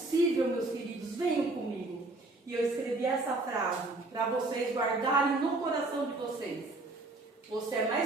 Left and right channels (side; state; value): left; quieter; 3.0 dB